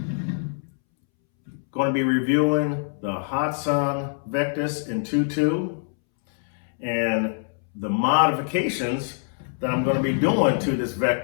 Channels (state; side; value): silent; right; 62 dB below the other